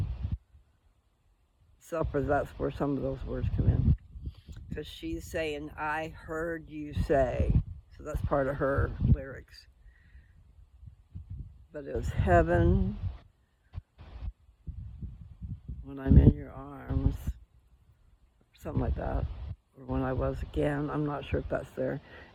So for that's where some of those words come in. Because she's saying, I heard you say. So that's part of her lyrics. But it was heaven when I'm in your arms. Something like that. Or when I was again. I'm not sure if that's there.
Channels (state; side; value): identical; both; correlation 1.00